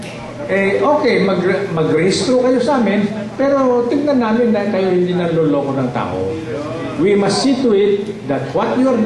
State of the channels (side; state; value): both; identical; correlation 1.00